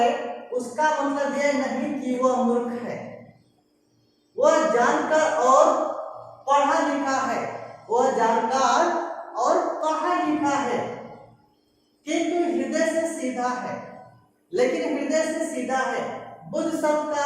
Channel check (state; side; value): identical; both; correlation 1.00